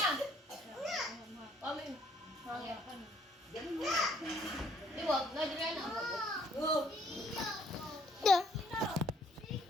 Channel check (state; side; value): normal; both; correlation 0.63